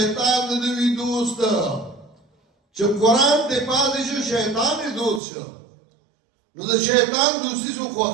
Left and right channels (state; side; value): drops out; left; at 5.2 s